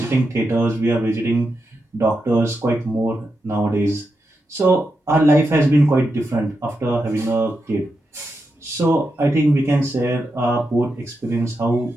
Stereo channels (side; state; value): both; normal; correlation 0.87